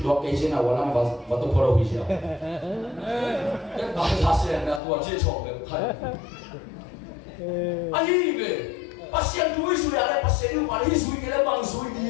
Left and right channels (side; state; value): right; drops out; at 4.8 s